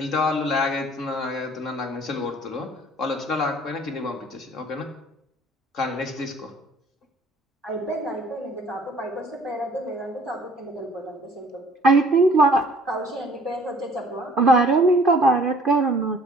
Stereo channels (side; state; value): both; normal; correlation 0.54